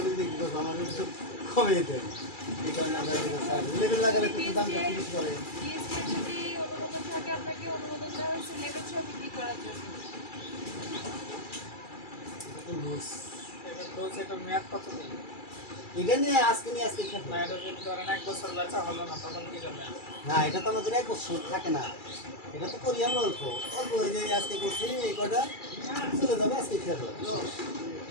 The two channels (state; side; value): late; right; 2.3 ms